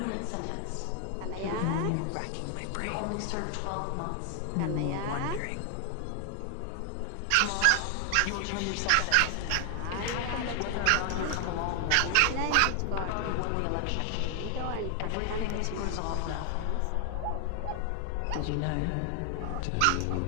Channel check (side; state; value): both; different; correlation 0.00